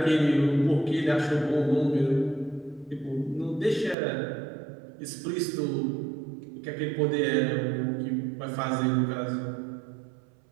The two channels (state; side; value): drops out; left; at 4.0 s